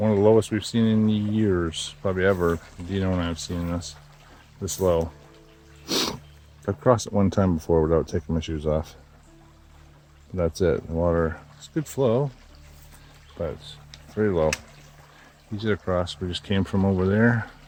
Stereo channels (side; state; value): both; identical; correlation 1.00